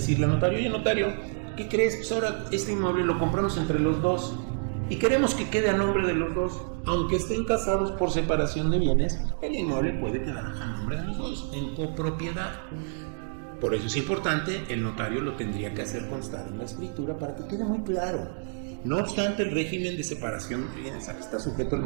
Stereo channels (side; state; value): left; silent; digital silence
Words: al notario: oye, notario, ¿qué crees? Pues ahora este inmueble lo compramos entre los dos y queremos que quede a nombre de los dos. Aunque estén casados por separación de bienes, el inmueble puede quedar a nombre de los dos, en copropiedad. Por eso es importante, el notario lo tendría que hacer constar en la escritura para que quede muy claro. No obstante, el régimen de separación de bienes está sujeto al